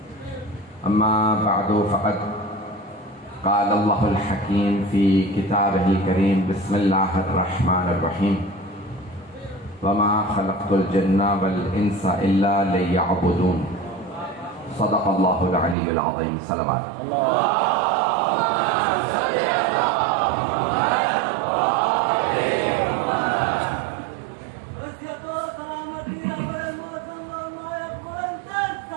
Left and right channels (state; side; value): drops out; left; at 15.8 s